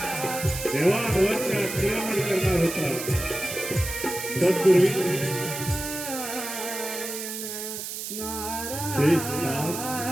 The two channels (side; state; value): right; noise; hiss, 7 dB below the sound